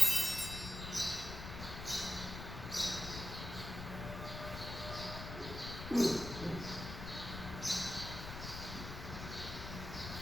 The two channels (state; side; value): noise; left; rumble, 8 dB below the sound